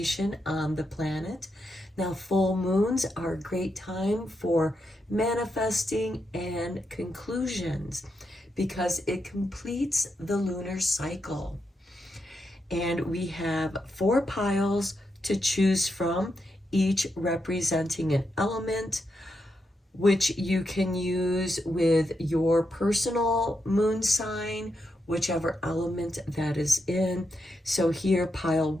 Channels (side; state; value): both; normal; correlation 0.84